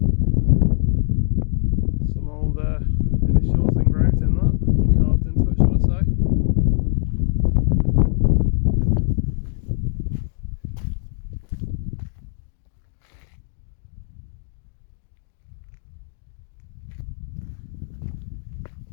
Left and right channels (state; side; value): silent; right; 55 dB below the other